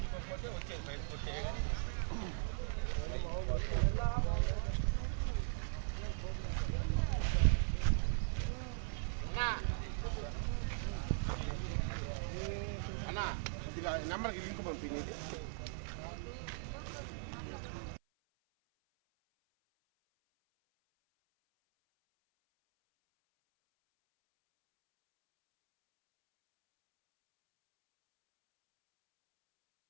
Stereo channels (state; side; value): silent; left; 52 dB below the other